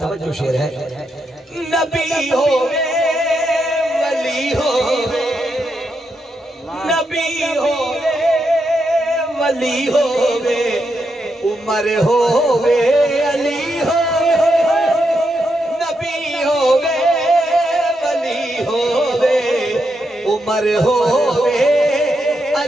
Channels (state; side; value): normal; both; correlation 0.82